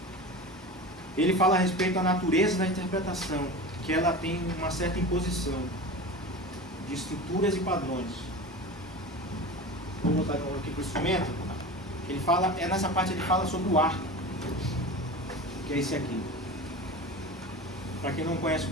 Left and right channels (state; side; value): normal; both; correlation 0.31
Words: Ele fala a respeito da natureza da interpretação, que ela tem uma certa imposição de estruturas e padrões. Vou voltar aqui para o instrumento. Ele fala, nessa parte ele fala sobre o arco, que é esse aqui. Para quem não conhece o